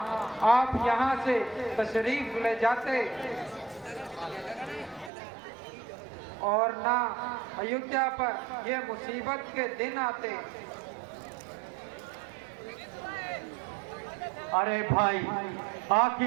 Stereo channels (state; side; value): drops out; left; at 5.1 s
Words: आप यहाँ से तशरीफ ले जाते और ना अयोध्या पर ये मुसीबत के दिन आते। अरे भाई